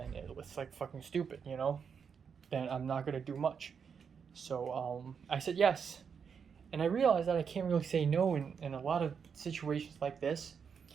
it's like fucking stupid, you know? Then I'm not gonna do much. So I said yes. And I realized that I can't really say no in a lot of situations like this.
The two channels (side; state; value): left; quieter; 6.6 dB